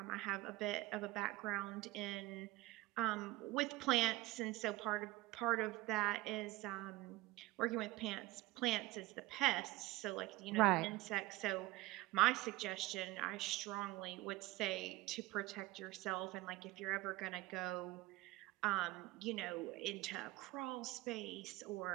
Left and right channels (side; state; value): left; quieter; 19.2 dB